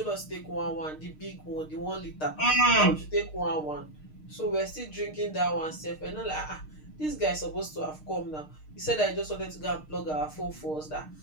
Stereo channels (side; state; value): right; late; 6.5 ms